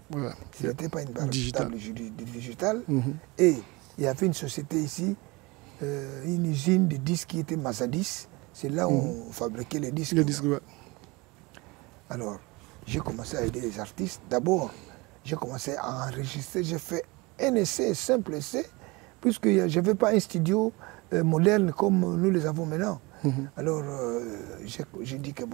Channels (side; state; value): left; quieter; 24.7 dB